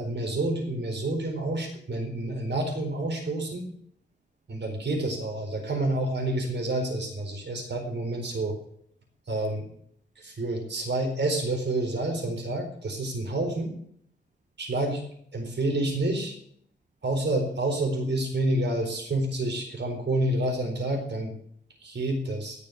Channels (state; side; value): normal; both; correlation 0.50